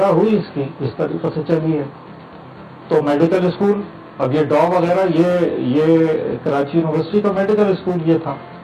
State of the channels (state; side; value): identical; both; correlation 1.00